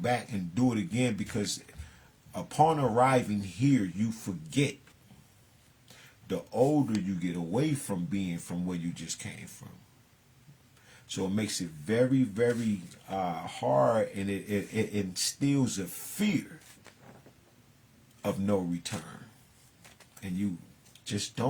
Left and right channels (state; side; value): identical; both; correlation 1.00